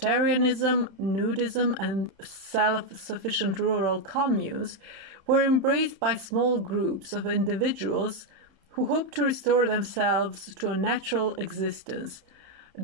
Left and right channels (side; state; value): left; late; 31 ms